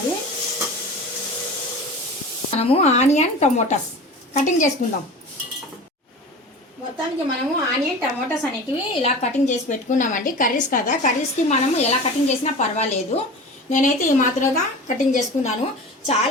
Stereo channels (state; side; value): normal; both; correlation 0.35